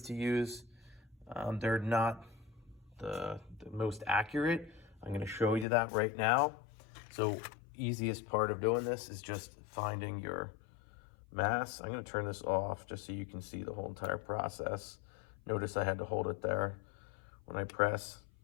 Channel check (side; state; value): right; drops out; at 5.7 s